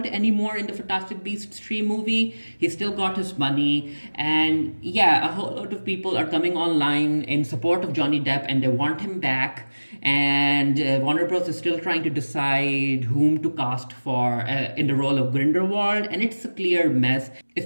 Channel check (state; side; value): inverted; both; correlation -1.00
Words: anymore in the Fantastic Beasts 3 movie, he still got his money. And yeah, a whole lot of people are coming online in support of Johnny Depp, and they want him back. And Warner Bros. Is still trying to decide whom to cast for in the role of Grindelwald, and it's a clear mess,